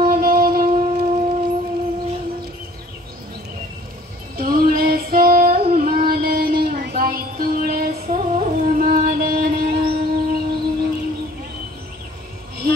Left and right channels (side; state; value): both; normal; correlation 0.53